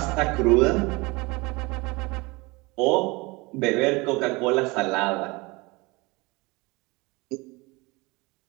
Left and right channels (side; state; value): left; quieter; 24.9 dB